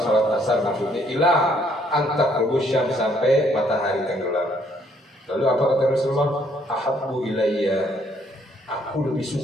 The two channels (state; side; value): normal; both; correlation 0.67